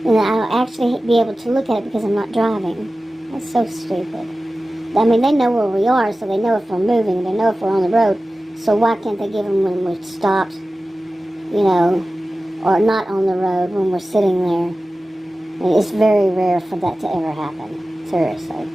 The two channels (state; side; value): normal; both; correlation 0.95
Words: And I'll actually be able to look at it because I'm not driving. That's so stupid. I mean, they know where we are, so they know if we're moving, they know if we're on the road. So why can't they give them when we're stopped, you know, or not on the road when we're sitting there? I mean, it's very rare for that to ever happen. Seriously.